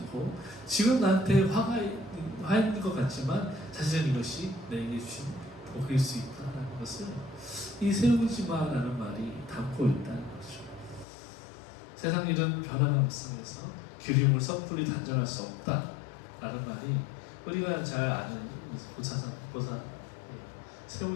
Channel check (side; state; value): right; drops out; at 11.1 s